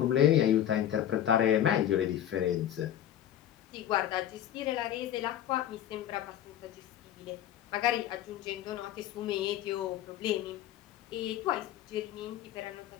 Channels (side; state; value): right; quieter; 11.2 dB